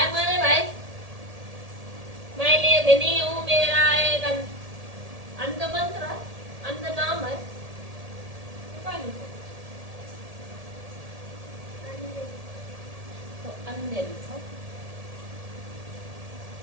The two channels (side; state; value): left; late; 1.8 ms